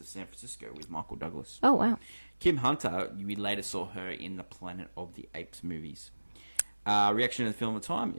of San Francisco with Michael Douglas. Oh, wow. Kim Hunter, we later saw her in the Planet of the Apes movies. Reaction to the film at the time,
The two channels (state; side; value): inverted; both; correlation -1.00